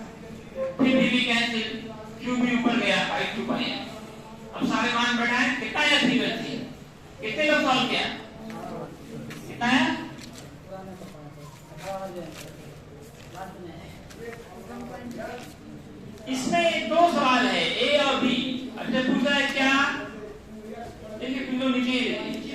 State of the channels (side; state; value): both; identical; correlation 1.00